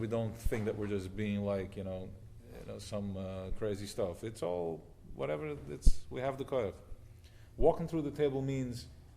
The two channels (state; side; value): identical; both; correlation 1.00